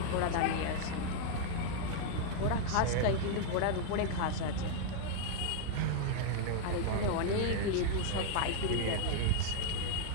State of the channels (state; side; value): different; both; correlation -0.01